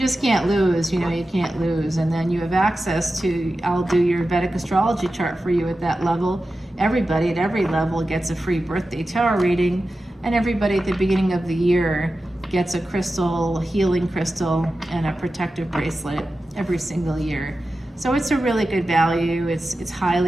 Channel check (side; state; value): both; normal; correlation 0.93